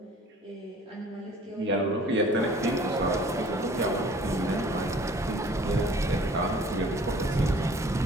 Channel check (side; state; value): both; normal; correlation 0.51